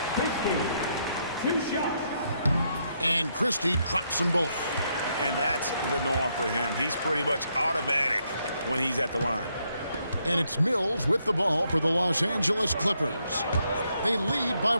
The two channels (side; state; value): both; inverted; correlation -0.76